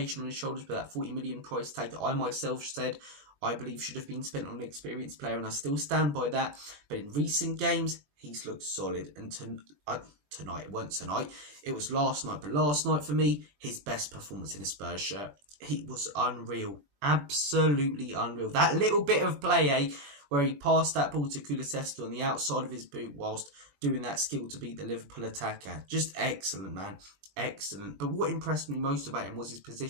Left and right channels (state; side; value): late; left; 20 ms